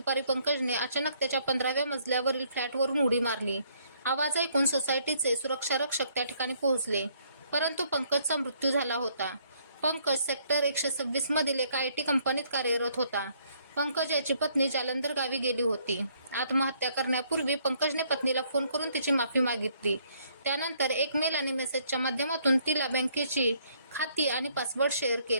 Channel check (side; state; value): both; inverted; correlation -0.67